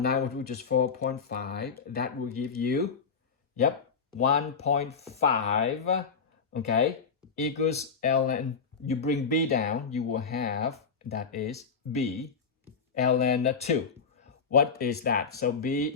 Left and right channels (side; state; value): right; quieter; 5.6 dB